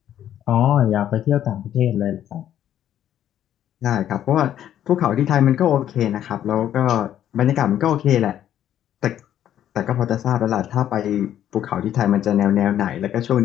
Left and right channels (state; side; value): quieter; right; 11.0 dB